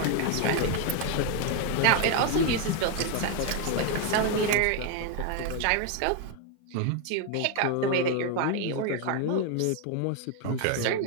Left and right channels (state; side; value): different; both; correlation 0.01